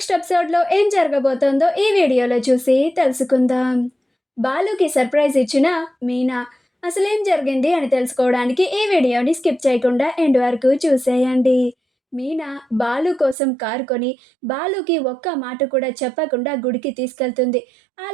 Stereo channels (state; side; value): drops out; left; at 13.4 s